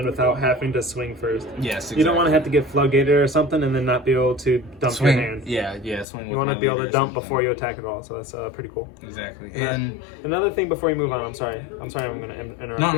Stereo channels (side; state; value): right; drops out; at 6.1 s